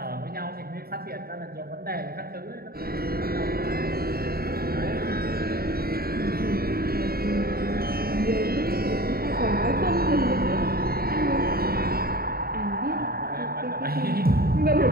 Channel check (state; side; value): late; left; 0.44 ms